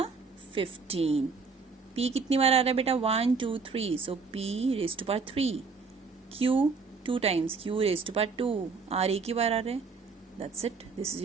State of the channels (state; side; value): quieter; left; 4.8 dB